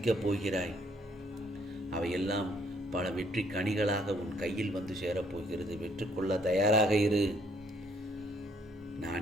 போகிறாய். அவையெல்லாம் பல வெற்றி கனிகளாக உன் கையில் வந்து சேரப்போகிறது. வெற்றுக்கொள்ள தயாராக இரு.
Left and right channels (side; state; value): both; normal; correlation 0.66